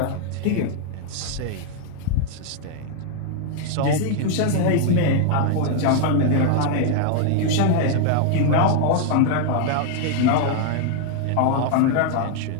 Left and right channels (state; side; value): different; both; correlation 0.00